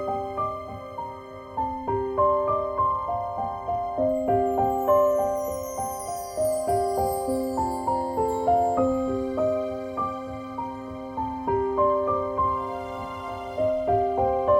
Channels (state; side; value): identical; both; correlation 1.00